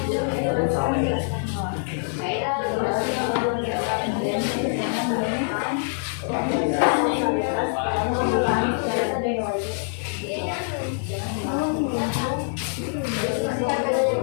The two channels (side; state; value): right; silent; digital silence